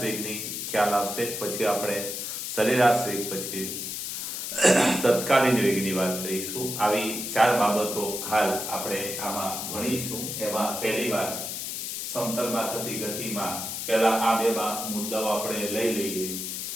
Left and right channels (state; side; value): noise; left; hiss, 5 dB below the sound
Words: વેગની ખ્યાલ આવશે પછી આપણે સરેરાશ વેગ પછી તત્કાલીન વેગની વાત કરીશું. આવી ચાર બાબતો હાલ આપણે આમાં ભણીશું. એમાં પહેલી વાત સમતલમાં થતી ગતિમાં પહેલા આ બે મુદ્દાઓ આપણે લઈ લઈએ.